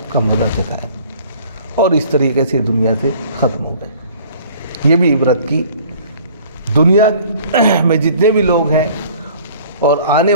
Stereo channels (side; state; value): both; inverted; correlation -0.52